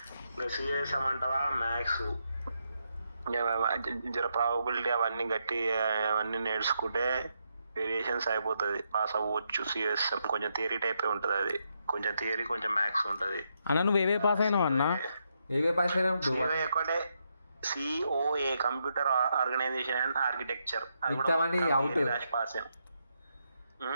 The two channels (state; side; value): inverted; both; correlation -0.80